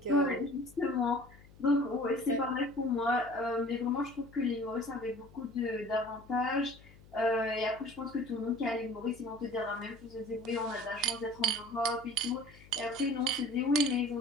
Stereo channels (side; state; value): left; noise; hum, 23 dB below the sound